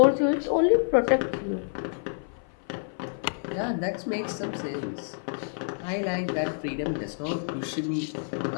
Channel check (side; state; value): right; silent; 56 dB below the other